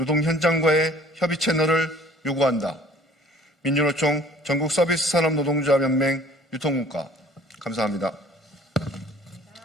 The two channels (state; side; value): normal; both; correlation 0.52